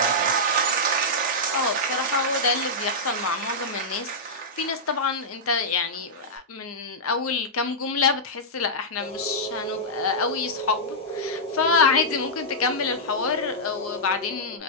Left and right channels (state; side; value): normal; both; correlation -0.10